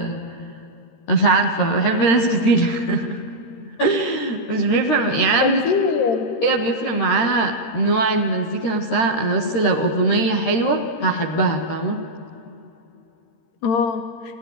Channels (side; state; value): right; late; 13 ms